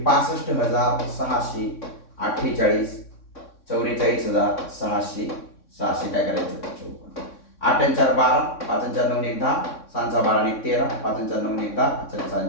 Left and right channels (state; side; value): late; right; 3.6 ms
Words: 65,648, 44,600, 600 काय करायचं 54. 8 आणि 4 12, 5 आणि 4 9 1 10, 6 4 12 आणि 1 13, 5 आणि 4 9 1 10, 6